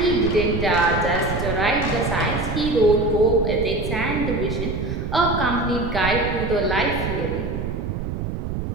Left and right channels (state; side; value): noise; right; rumble, 4 dB below the sound